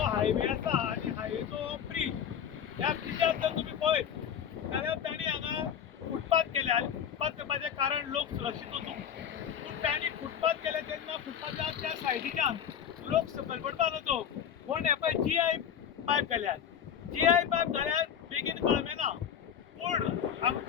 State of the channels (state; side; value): quieter; right; 8.5 dB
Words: हायवे आसा आनी हायवेचो ब्रीज ह्या ब्रिजार जर तुमी पळयत जाल्यार तांणी हांगा फुटपाथ केले आनी फुटपाथ करपाचें कारण लोक सुरक्षीत वचूंक. पूण तांणी फुटपाथ केले तेन्ना फुटपाथाच्या त्या सायडीच्यान लोक सकयल पडपा नजो म्हूण हे पळय GI पायप घाल्यात. GI पायप घाल्यात बेगीन कळमें ना. पूण